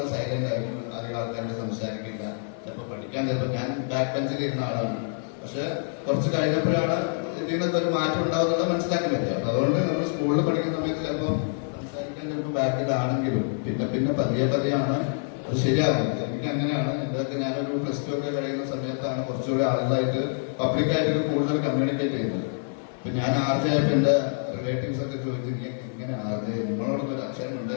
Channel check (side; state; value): right; silent; 61 dB below the other